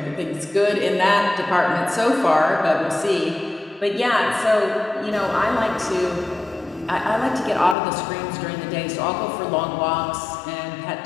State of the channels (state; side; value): drops out; right; at 7.8 s